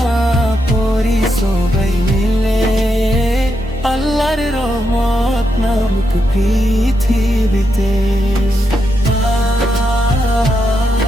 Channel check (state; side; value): normal; both; correlation 0.83